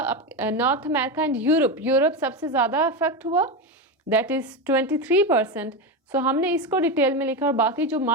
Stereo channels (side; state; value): both; normal; correlation 0.15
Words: अमेरिका एंड यूरोप सबसे ज़्यादा अफेक्ट हुआ, दैट इज़ 23%। सो हमने इसको डिटेल में लिखा और बाकी जो